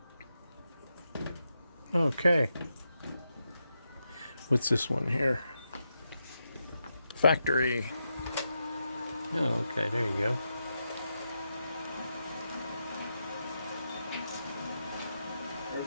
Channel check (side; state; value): both; inverted; correlation -0.86